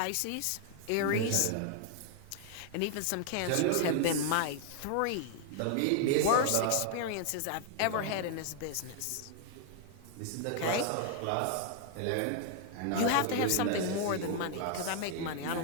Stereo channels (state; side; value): different; both; correlation 0.00